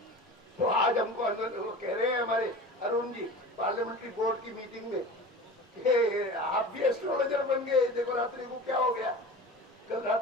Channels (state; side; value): normal; both; correlation 0.35